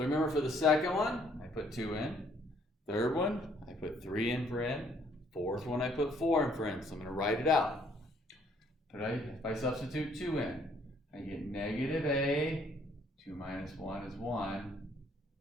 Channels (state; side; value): normal; both; correlation 0.64